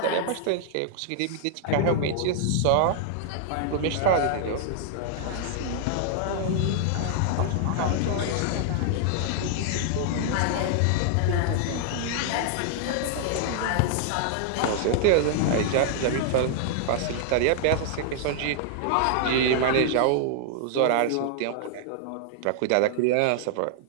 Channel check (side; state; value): both; different; correlation -0.01